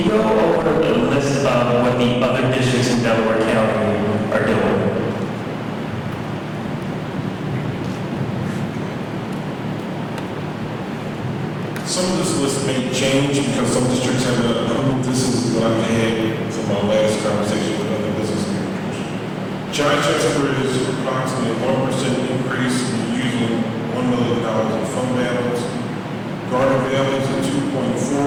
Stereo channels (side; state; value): both; identical; correlation 1.00